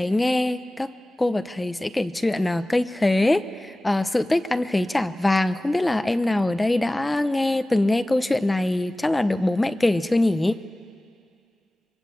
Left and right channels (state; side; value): normal; both; correlation 0.98